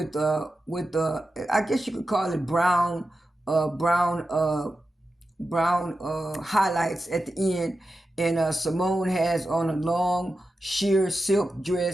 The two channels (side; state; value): both; normal; correlation 0.91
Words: I guess you could call it brown highlights at the end. And Simone has on a long sheer silk